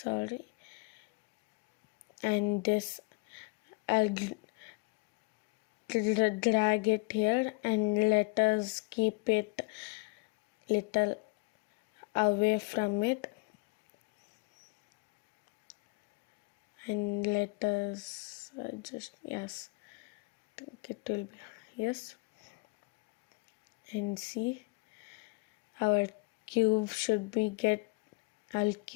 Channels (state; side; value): quieter; right; 27.9 dB